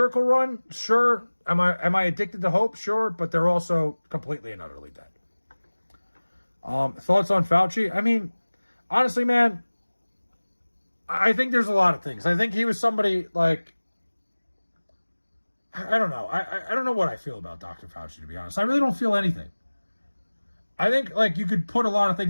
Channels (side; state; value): both; inverted; correlation -1.00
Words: run? Sure. Am I addicted to hope? Sure. But they're also completely and utterly dead. Thoughts on Fauci? I mean, honestly, man, I think there's a lot of things. I think he was somebody like, I don't know. I don't know what I feel about Dr. Fauci, to be honest. I really don't feel anything. I think, like, you could put a lot of